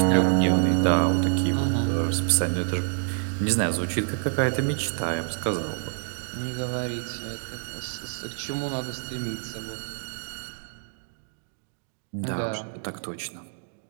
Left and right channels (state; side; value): silent; left; digital silence